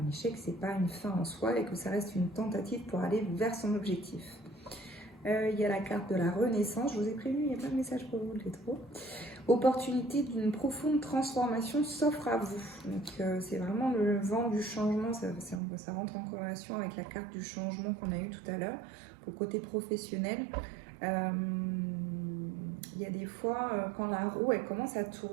échec c'est pas une fin en soi et que ça reste une tentative pour aller vers son objectif. Il y a la carte de la renaissance, je vous ai prévenu, il y a plein de messages pour vous les taureaux. Opportunité d'une profonde transformation s'offre à vous. Donc c'est vraiment le vent du changement, ça rentre en corrélation avec la carte du changement qu'on a eu tout à l'heure. Pour le côté professionnel, il y a des fois, quand la roue elle commence à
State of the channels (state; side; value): drops out; left; at 15.6 s